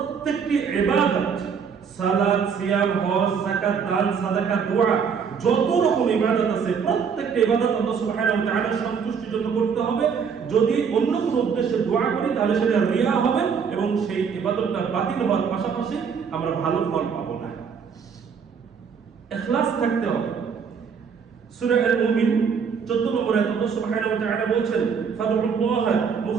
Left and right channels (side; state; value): left; quieter; 6.4 dB